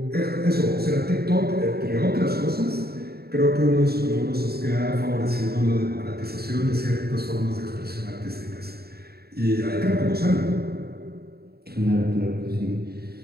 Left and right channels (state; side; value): late; left; 0.46 ms